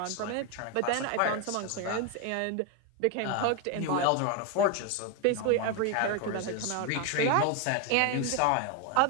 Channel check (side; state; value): both; different; correlation 0.01